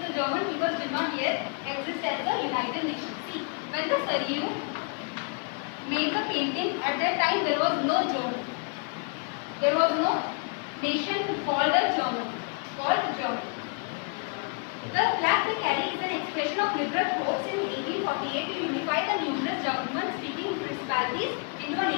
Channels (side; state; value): right; quieter; 37.2 dB